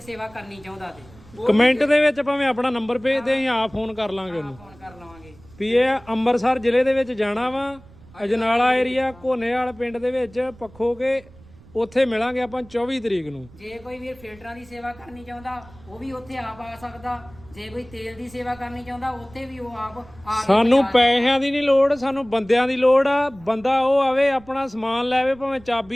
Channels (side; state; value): right; noise; rumble, 23 dB below the sound